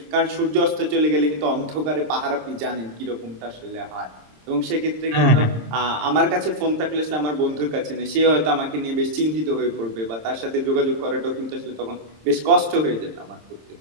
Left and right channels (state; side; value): late; left; 26 ms